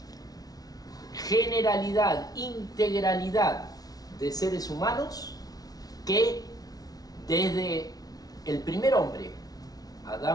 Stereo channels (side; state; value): right; late; 0.18 ms